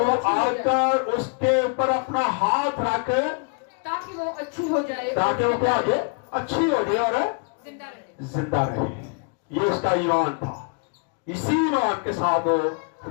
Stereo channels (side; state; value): right; quieter; 36.3 dB